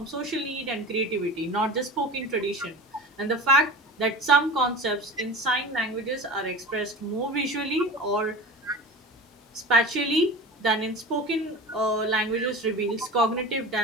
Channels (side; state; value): both; normal; correlation 0.33